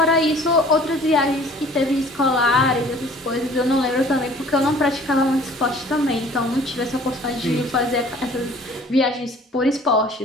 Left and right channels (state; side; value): normal; both; correlation 0.51